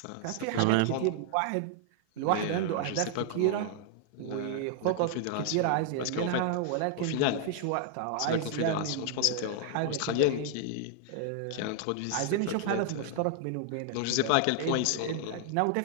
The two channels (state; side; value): different; both; correlation 0.00